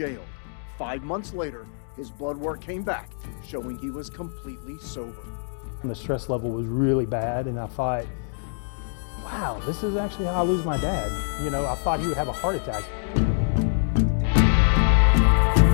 5 months later, his blood work came back, showing he was completely sober. The stress level was really bad, and I thought, wow, this is actually how I lose my dad. You know, I thought he would have a heart attack.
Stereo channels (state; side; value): silent; right; digital silence